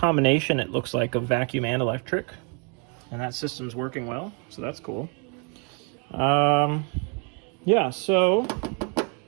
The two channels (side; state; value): left; quieter; 38.0 dB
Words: it looks like, of vacuum and electric. And that system's working well, so that's cool. Yeah, so I